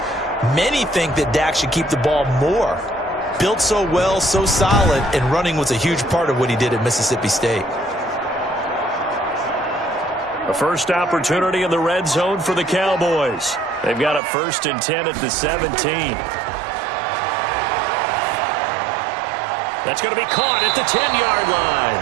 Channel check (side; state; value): left; drops out; at 14.2 s